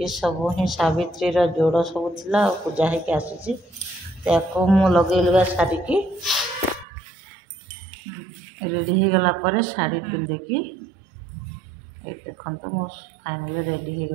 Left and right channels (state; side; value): drops out; left; at 6.9 s